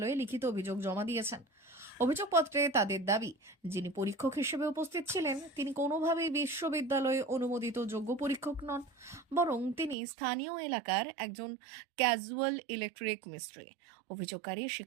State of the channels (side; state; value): left; drops out; at 10.0 s